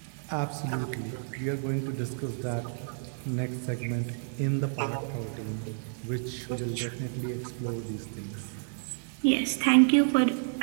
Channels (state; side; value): silent; left; digital silence